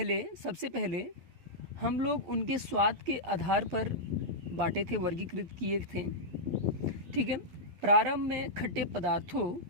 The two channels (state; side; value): late; left; 12 ms